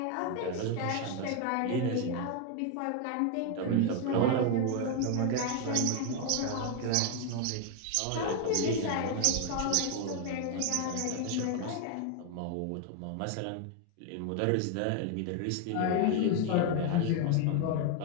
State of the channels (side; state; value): both; different; correlation 0.01